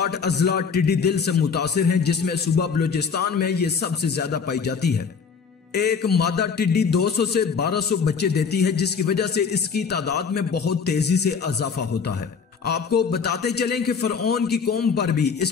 अजला टिड्डी दिल से मुतासिर हैं, जिसमें सूबा बलूचिस्तान में ये सबसे ज्यादा पाई जाती है। एक मादा टिड्डी 200 से 1200 बच्चे देती है, जिसकी वजह से इसकी तादाद में बहुत तेजी से इजाफा होता है। आपको बताते चलें कि फरऔन की कौम पर भी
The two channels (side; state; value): right; quieter; 5.9 dB